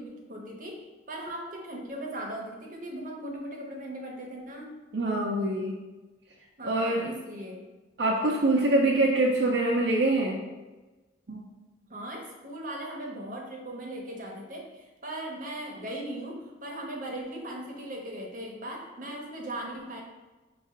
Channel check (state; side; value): normal; both; correlation 0.28